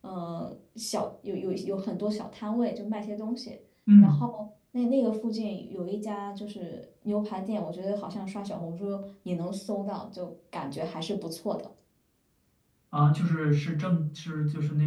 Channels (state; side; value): identical; both; correlation 1.00